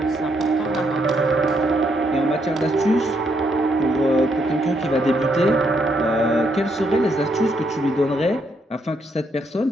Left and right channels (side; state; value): both; normal; correlation 0.75